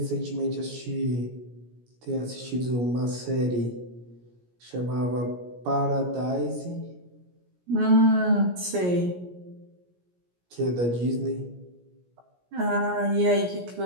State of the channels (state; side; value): late; left; 17 ms